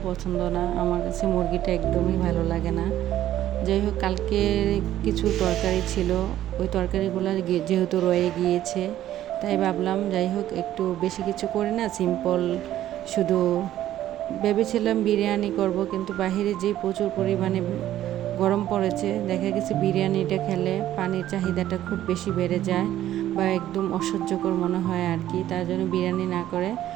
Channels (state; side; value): quieter; left; 12.7 dB